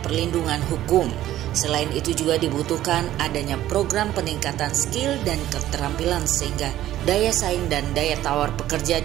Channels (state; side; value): quieter; left; 13.5 dB